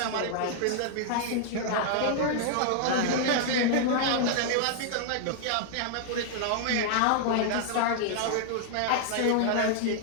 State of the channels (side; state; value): both; different; correlation 0.00